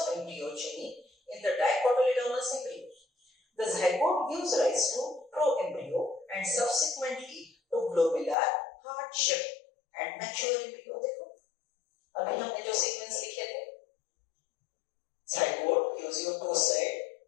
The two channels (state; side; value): drops out; right; at 8.3 s